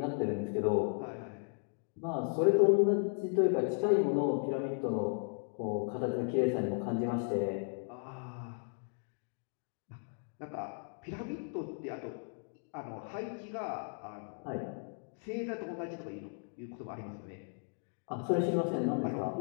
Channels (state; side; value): silent; right; 54 dB below the other